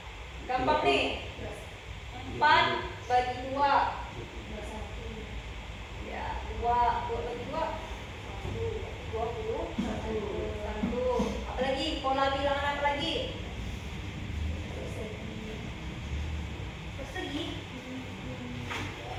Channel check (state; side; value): identical; both; correlation 1.00